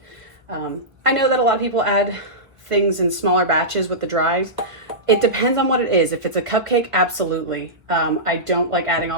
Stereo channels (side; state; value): left; late; 1.0 ms